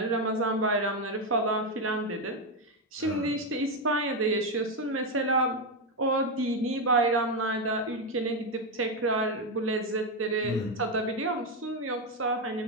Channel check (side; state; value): both; normal; correlation 0.07